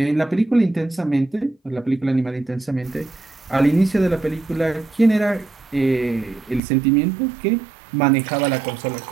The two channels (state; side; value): drops out; left; at 6.6 s